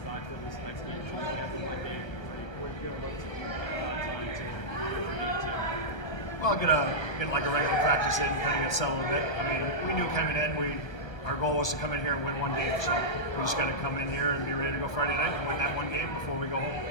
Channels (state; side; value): late; right; 1.1 ms